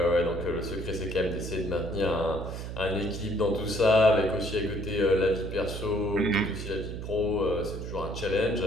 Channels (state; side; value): noise; right; hum, 7 dB below the sound